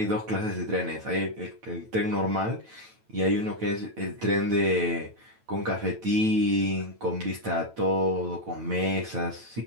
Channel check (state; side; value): late; left; 9.1 ms